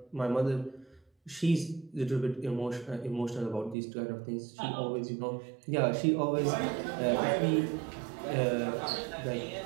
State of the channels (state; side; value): drops out; left; at 3.8 s